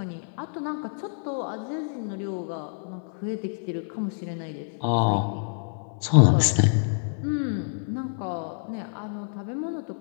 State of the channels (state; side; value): silent; right; digital silence